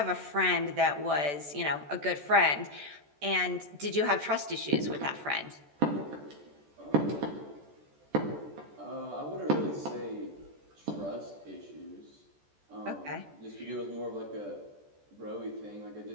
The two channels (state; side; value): late; left; 14 ms